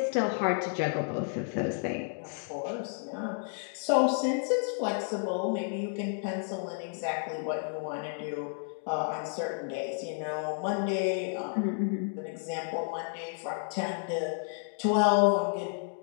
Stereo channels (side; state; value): right; silent; 57 dB below the other